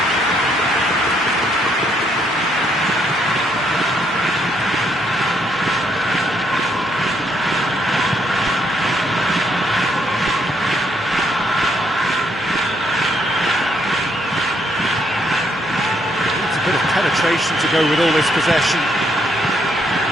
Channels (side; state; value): both; normal; correlation 0.73